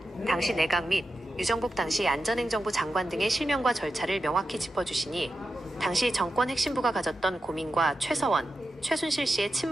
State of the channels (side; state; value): both; normal; correlation 0.90